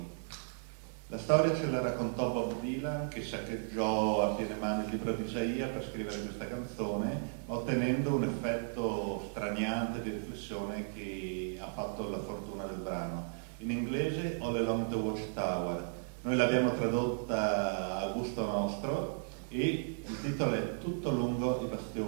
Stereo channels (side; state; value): left; silent; digital silence